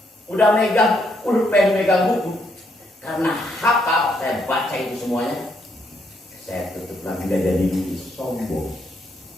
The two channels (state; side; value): normal; both; correlation 0.74